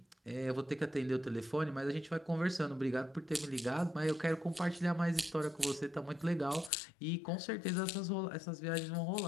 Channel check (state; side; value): drops out; right; at 6.7 s